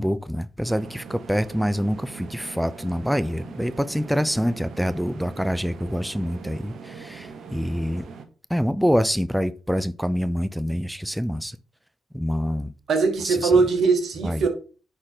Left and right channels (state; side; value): normal; both; correlation 0.89